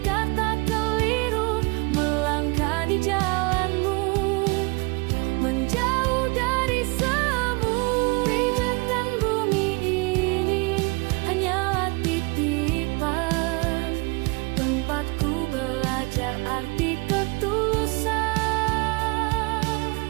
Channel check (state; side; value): quieter; left; 27.7 dB